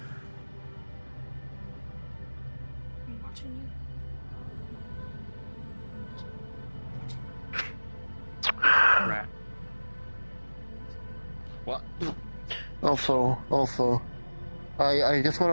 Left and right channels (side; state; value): both; inverted; correlation -1.00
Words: I'm watching you. Rat. What? Also, I just